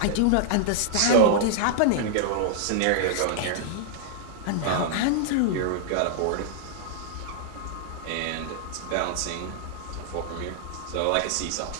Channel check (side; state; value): both; different; correlation -0.01